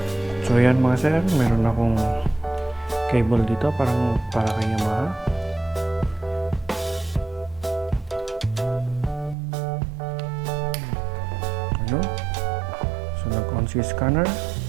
So yan mga sir, meron akong cable dito para kay Yamaha. Ano? So nag-on si scanner.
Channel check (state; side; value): drops out; left; at 9.3 s